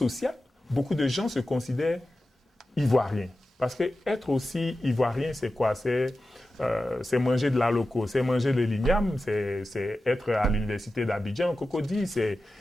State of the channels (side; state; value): both; normal; correlation 0.93